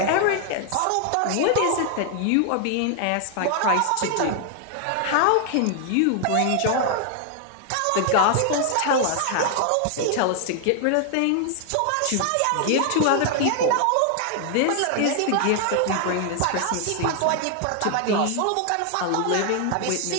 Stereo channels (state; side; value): different; both; correlation 0.00